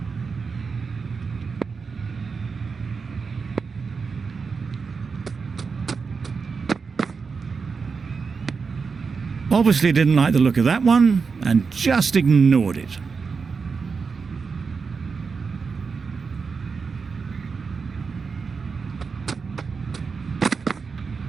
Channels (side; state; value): left; quieter; 5.1 dB